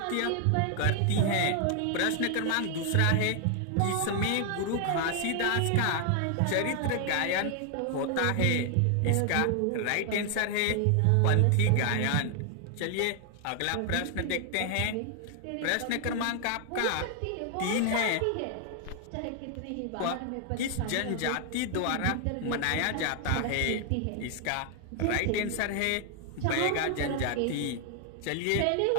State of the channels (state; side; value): different; both; correlation 0.00